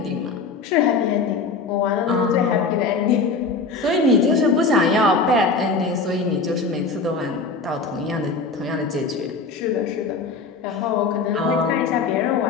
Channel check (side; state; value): right; quieter; 4.3 dB